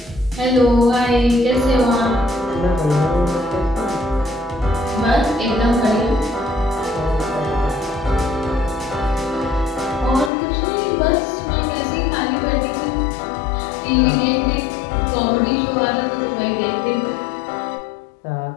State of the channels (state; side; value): drops out; right; at 10.3 s